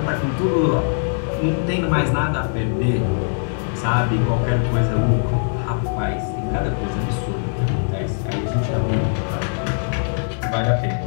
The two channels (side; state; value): right; silent; digital silence